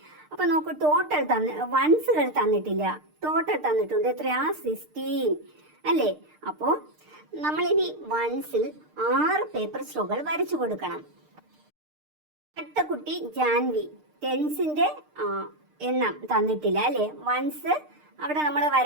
അപ്പൊ നോക്കൂ, ടോട്ടൽ വൺസുകൾ തന്നിട്ടില്ല, ടോട്ടൽ തന്നിട്ടുണ്ട് എത്രയാ, 16 അല്ലേ. അപ്പോ നമ്മളിനി വൺസിൽ 6 പേപ്പർ സ്ട്രോകൾ വരച്ചു കൊടുക്കണം. അടുത്ത കുട്ടി ജാൻവി. ടെൻസിന്റെ എണ്ണം തന്നിട്ടില്ല അല്ലേ, വൺസ് അവിടെ നമ്മൾ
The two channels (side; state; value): left; late; 6.6 ms